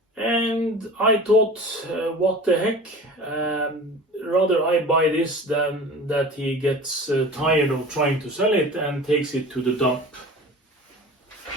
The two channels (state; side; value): normal; both; correlation 0.38